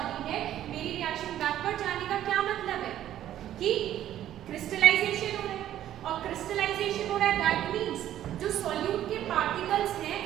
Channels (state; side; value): quieter; left; 12.0 dB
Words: है, मेरी रिएक्शन बैकवर्ड जाने का क्या मतलब है? कि क्रिस्टलाइजेशन हो रहा है, और क्रिस्टलाइजेशन हो रहा है दैट मींस जो सॉल्यूट के पार्टिकल्स हैं